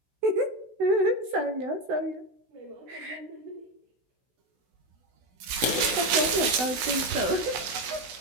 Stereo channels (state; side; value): late; left; 16 ms